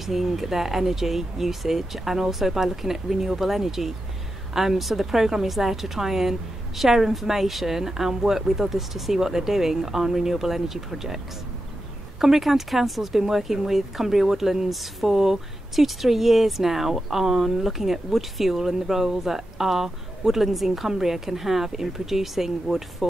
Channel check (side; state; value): both; normal; correlation 0.89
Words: their energy usage and also by looking at renewable energy. So the programme is there to try and share information and work with others to see what they're doing on renewable energy projects. Cumbria County Council has been working with Cumbria Woodlands for 2 to 3 years now on looking at wood fuel and the role that our woodlands in Cumbria can have in producing wood